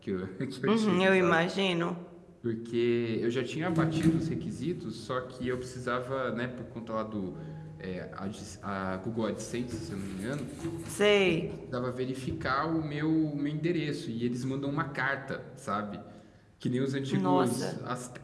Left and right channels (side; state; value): both; identical; correlation 1.00